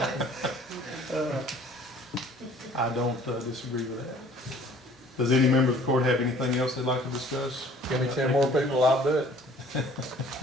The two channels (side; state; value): both; normal; correlation 0.54